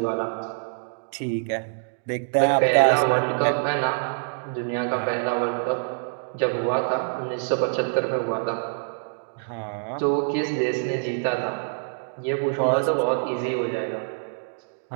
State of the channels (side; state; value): left; silent; digital silence